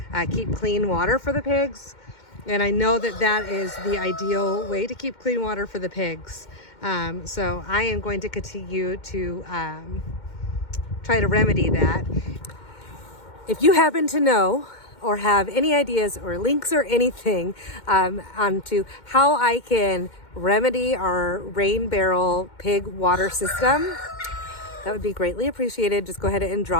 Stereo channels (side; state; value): right; late; 2.1 ms